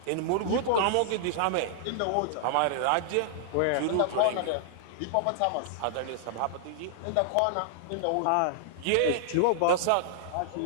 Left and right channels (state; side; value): different; both; correlation -0.01